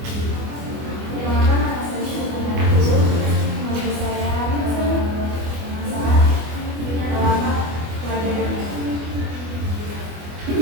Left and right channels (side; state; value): left; late; 24 ms